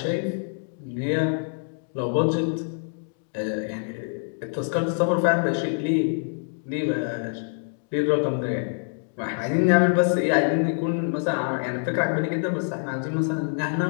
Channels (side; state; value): right; silent; digital silence